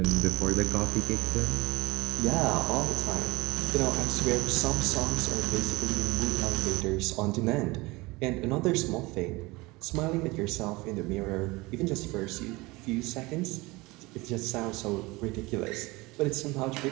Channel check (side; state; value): left; quieter; 22.7 dB